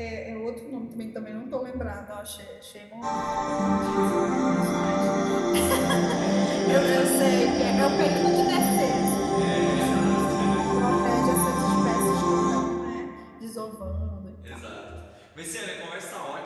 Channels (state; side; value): identical; both; correlation 1.00